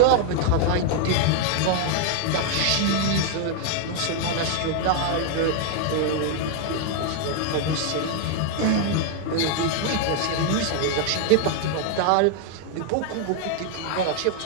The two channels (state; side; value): different; both; correlation 0.00